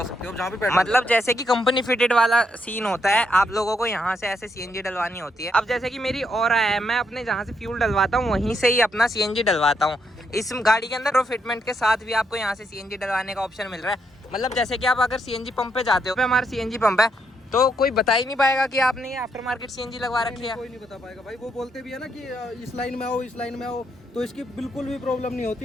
सकते हो, जहाँ पे मतलब जैसे कि कंपनी फिटेड वाला सीन होता है, आप लोगों को यहाँ से ऐसे सीएनजी डलवानी होती है। अब जैसे कि मेरी और है, मैं अपने जहाँ से फ्यूल डलवाता हूँ वहीं से ही अपना सीएनजी डलवाता हूँ। इस गाड़ी के अंदर फिटमेंट के साथ भी आपको यहाँ से सीएनजी डलवाने का ऑप्शन मिल रहा है। मतलब जैसे कि आप अगर सीएनजी पंप पे जाते हो, हमारा सीएनजी पंप है, तो कोई बता ही नहीं पाएगा कि आपने ये आफ्टर मार्केट सीएनजी लगवा रखी है। कोई नहीं बता पाएगा भाई। वो बोलते भी है ना कि इस लाइन में आओ, इस लाइन में आओ, तो इसकी बिल्कुल भी प्रॉब्लम नहीं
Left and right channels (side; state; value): both; normal; correlation 0.77